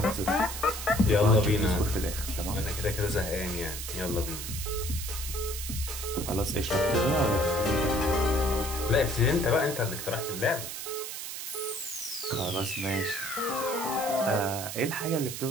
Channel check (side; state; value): right; noise; hiss, 7 dB below the sound